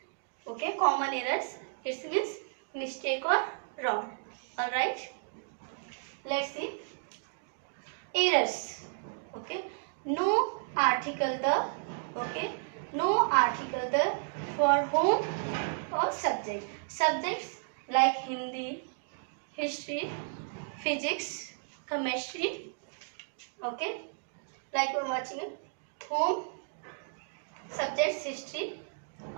Okay, common errors. It means mistake or wrong. Alright. Let's see. Errors. Okay, no article the. Okay, no article the for whom or subject. Subjects like Hindi, history, physics, chemistry. Okay, like we're watching it. Home, subjects, history.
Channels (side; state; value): left; silent; digital silence